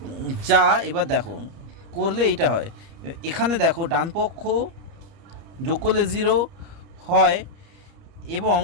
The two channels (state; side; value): late; left; 30 ms